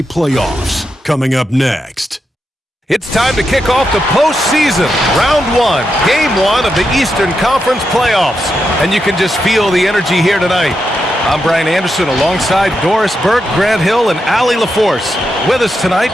playoffs, coming up next. It's time to kick off the postseason. Round 1, Game 1 of the Eastern Conference playoffs. And you can just feel the energy here tonight. I'm Brian Anderson alongside Doris Burke, Grant Hill, and Allie LaForce. With us tonight,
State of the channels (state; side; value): normal; both; correlation 0.85